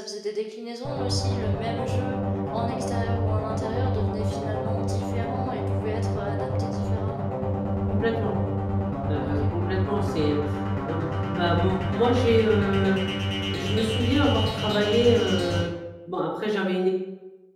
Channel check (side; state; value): both; identical; correlation 1.00